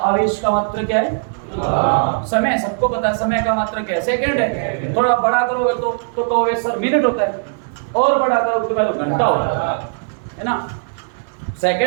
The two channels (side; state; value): left; silent; digital silence